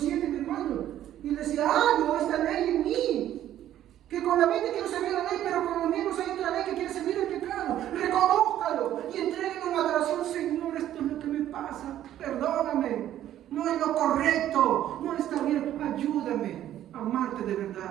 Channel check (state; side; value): quieter; left; 12.0 dB